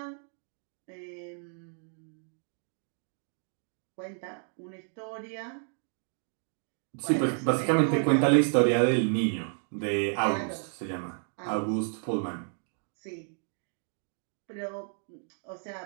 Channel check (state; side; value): silent; left; 57 dB below the other